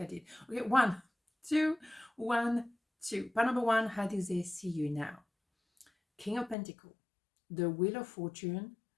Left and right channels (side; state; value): right; drops out; at 6.6 s